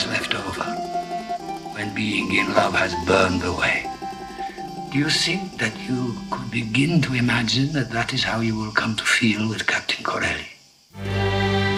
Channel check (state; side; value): identical; both; correlation 1.00